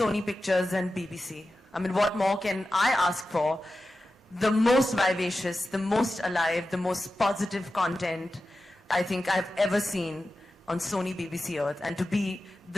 Pictures and BBC. I mean, what more can I ask for? The most vivacious, the most alive, the most positive content I think I've ever seen on Sony BBC Earth. And to be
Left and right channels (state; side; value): normal; both; correlation 0.93